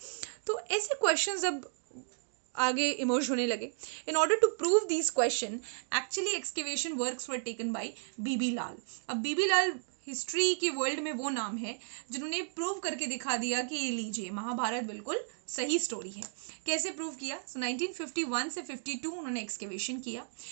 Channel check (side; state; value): left; silent; digital silence